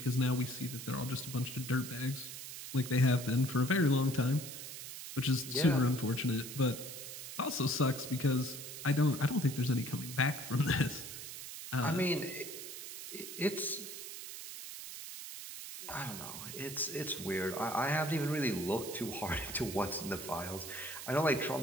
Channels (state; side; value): noise; right; hiss, 9 dB below the sound